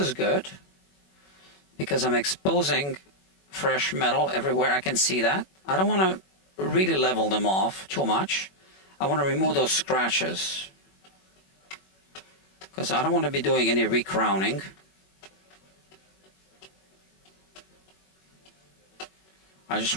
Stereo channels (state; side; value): late; right; 21 ms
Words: good because I'm exposing fresh metal everywhere I can see that. I don't want to really level them off too much. I want to remove those scratches because I don't want to be doing any recrowning. I just